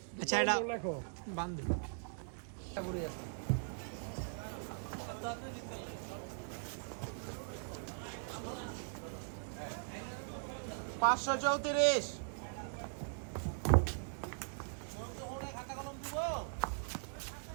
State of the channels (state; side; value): silent; left; digital silence